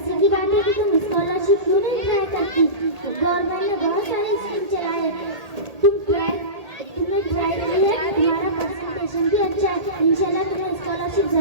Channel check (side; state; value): left; late; 1.8 ms